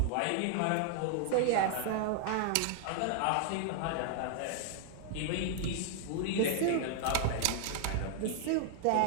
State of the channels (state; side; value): different; both; correlation -0.01